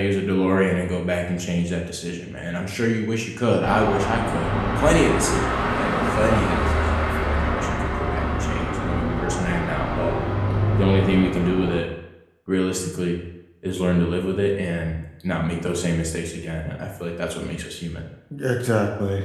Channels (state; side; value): identical; both; correlation 1.00